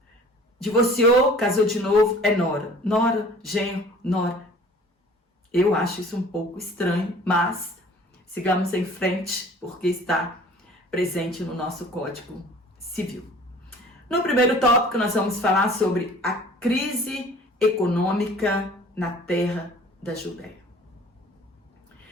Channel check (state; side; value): normal; both; correlation 0.48